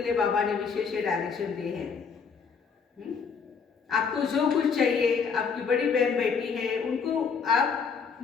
लिए बाबा ने विशेष डायरेक्शन दिए हैं। आपको जो कुछ चाहिए, आपकी बड़ी बहन बेटी है, उनको आप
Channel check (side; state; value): right; quieter; 5.8 dB